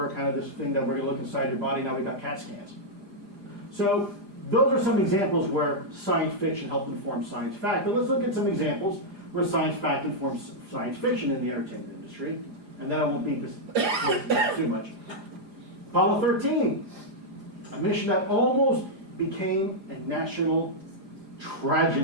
kind of this thing that we're going to look inside your body. Now we've got CAT scans. So those are some examples where science fiction helped inform science fact. But let's look at some examples where science fact informs science fiction in the entertainment industry. And then I won't beat this too much. Apollo 13, a mission that almost became a national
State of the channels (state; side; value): late; left; 4.9 ms